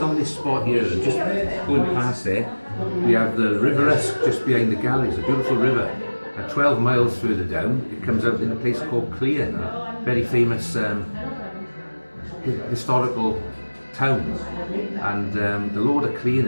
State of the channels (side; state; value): both; inverted; correlation -1.00